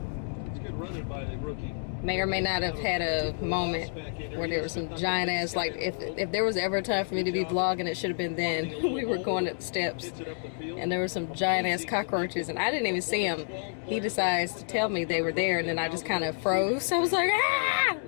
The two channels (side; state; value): right; silent; digital silence